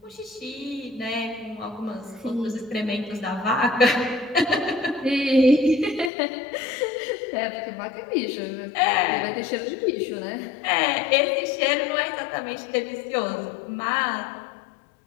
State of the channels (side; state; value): right; drops out; at 6.1 s